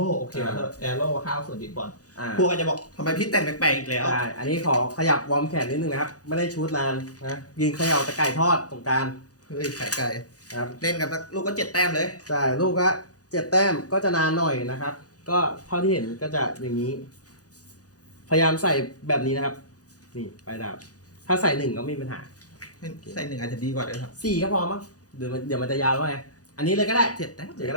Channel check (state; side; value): late; right; 0.67 ms